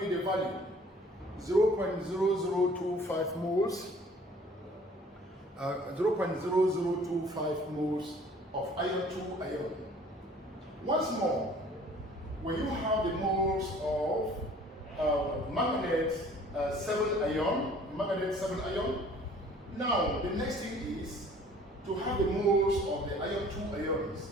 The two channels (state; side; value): normal; both; correlation 0.53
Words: the value, 0.0025 moles, 0.0025 moles of iron 2 ion. Once more, when you have the moles of manganate 7 ion, now the next thing is to have the moles of the iron 2 ions.